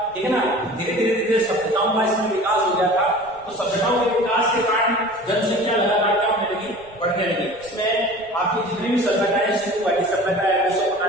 ठीक है ना। धीरे धीरे धीरे सभ्यताओं का इसमें विकास हो गया था। तो सभ्यताओं के विकास के कारण जनसंख्या लगातार क्या होने लगी? बढ़ने लगी। इसमें आपकी जितनी भी सभ्यताएं, सिंधु घाटी सभ्यता है,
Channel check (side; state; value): right; noise; rumble, 25 dB below the sound